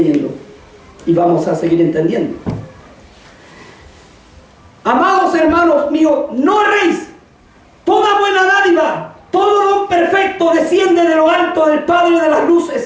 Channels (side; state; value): both; identical; correlation 1.00